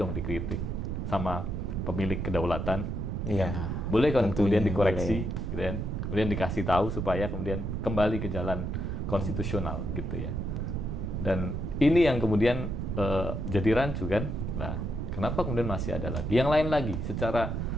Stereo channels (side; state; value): right; noise; rumble, 2 dB below the sound